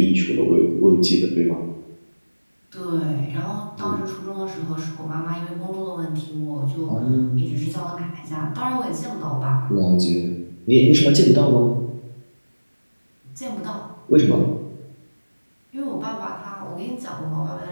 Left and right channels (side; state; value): both; inverted; correlation -1.00